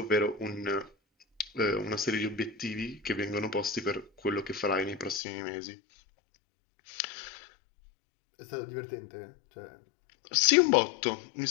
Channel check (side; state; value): right; drops out; at 5.2 s